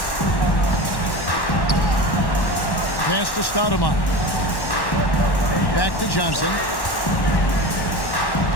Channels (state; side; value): late; right; 1.1 ms